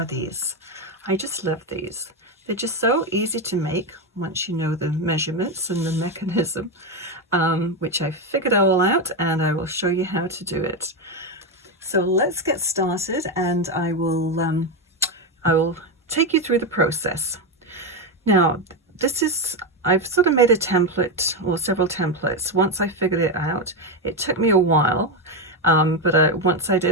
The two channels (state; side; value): normal; both; correlation 0.10